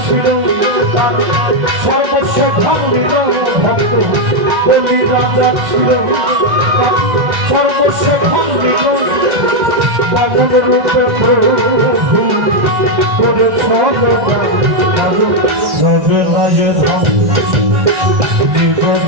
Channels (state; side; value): late; left; 2.0 ms